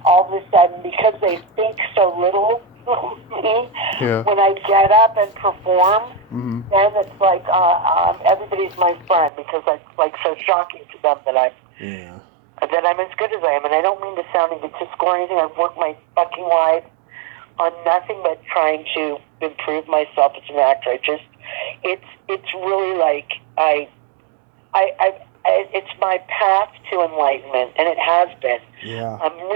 all of a sudden, because they think so little of me, when I get up and perform, then it's like everybody's my friend, because it's like so shocking to them that I'm as good as I am. And I don't mean to sound egotistical or anything. I've worked my fucking life on nothing but trying to improve myself as an actor. It's really like it's my path to enlightenment, and it has been. Yeah.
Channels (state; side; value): drops out; left; at 9.3 s